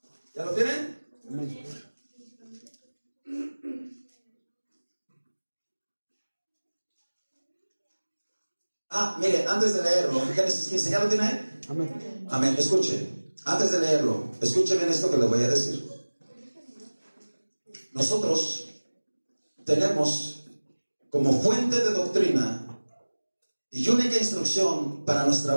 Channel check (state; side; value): inverted; both; correlation -1.00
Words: ¿Ya lo tienen? Amén. Mire, antes de leerlo, Génesis 15, ¿ya lo tiene ahí? Amén. Amén. Escuche, antes de leerlo, escuche bien esto que le voy a decir. Nosotros tenemos como fuente de doctrina y única instrucción para nuestra